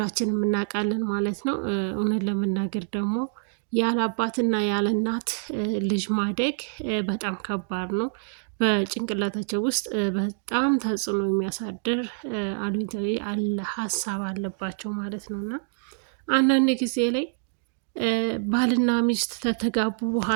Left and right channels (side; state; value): left; silent; digital silence